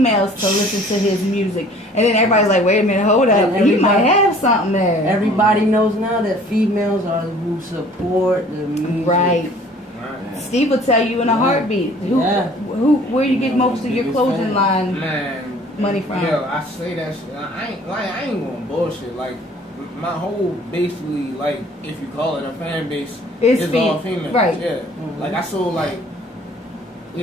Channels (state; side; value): normal; both; correlation 0.52